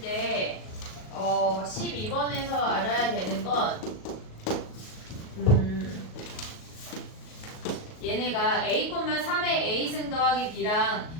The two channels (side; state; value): right; late; 38 ms